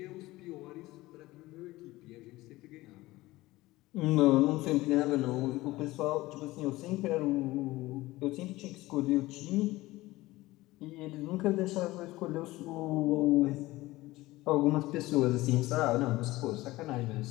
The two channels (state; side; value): quieter; right; 18.7 dB